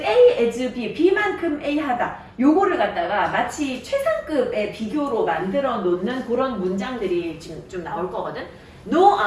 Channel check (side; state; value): both; identical; correlation 1.00